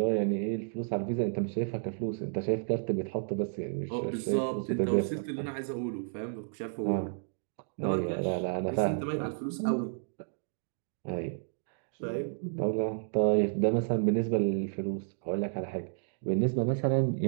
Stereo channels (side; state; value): left; silent; digital silence